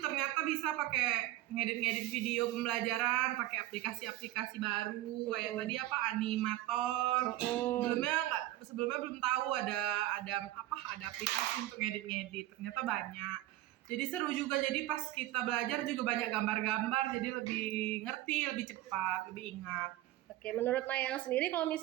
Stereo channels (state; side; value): quieter; left; 15.4 dB